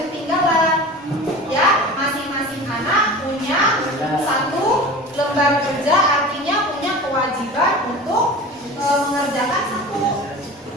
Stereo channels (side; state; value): both; normal; correlation 0.35